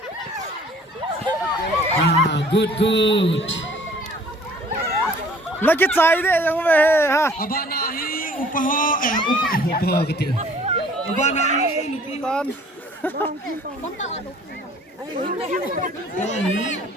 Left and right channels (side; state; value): both; normal; correlation 0.53